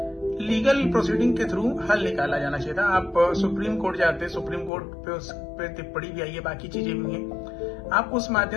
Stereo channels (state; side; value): drops out; right; at 4.7 s